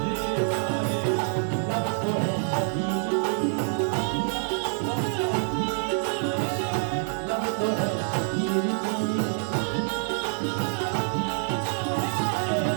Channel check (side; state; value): left; silent; 61 dB below the other